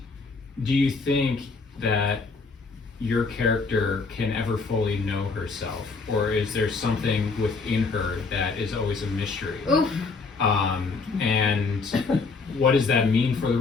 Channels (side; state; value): right; quieter; 4.3 dB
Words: do you think that your character can ever fully know herself, or is there something within her that is always a mystery? Oof. And what does that mean for the